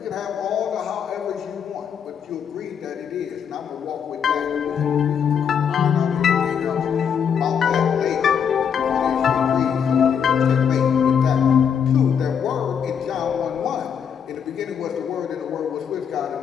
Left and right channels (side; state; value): right; quieter; 7.5 dB